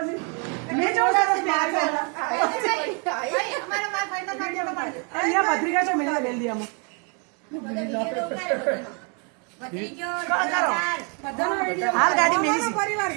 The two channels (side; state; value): left; quieter; 36.4 dB